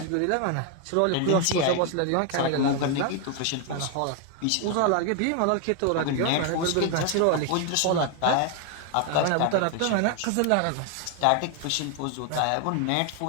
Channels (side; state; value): both; different; correlation 0.01